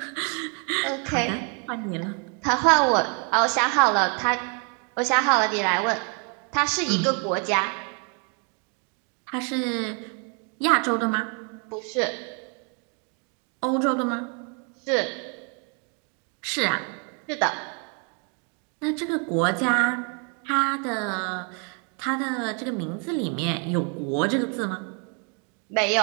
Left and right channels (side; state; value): left; quieter; 37.8 dB